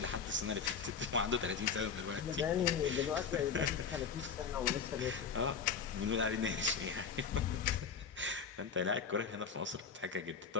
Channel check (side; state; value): right; quieter; 6.1 dB